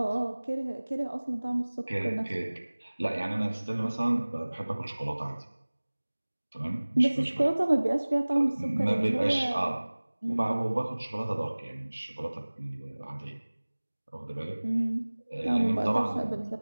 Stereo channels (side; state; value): both; inverted; correlation -1.00